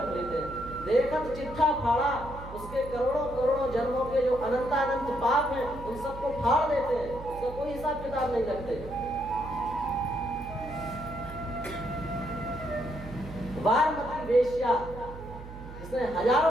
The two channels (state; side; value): noise; right; hum, 13 dB below the sound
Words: लेते हैं। देखत चिट्ठा फाड़ा, उसके करोड़ों करोड़ों जन्मों के जो अनंतानंत पाप हैं उन सबको फाड़ देते हैं, उसका कोई हिसाब किताब नहीं रखते। वारमती वेश्या जिसने